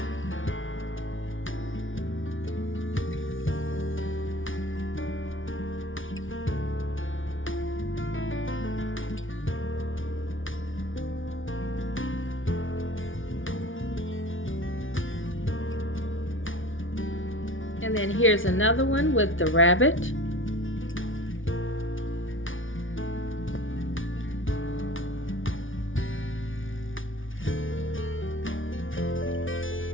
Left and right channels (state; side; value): late; right; 0.57 ms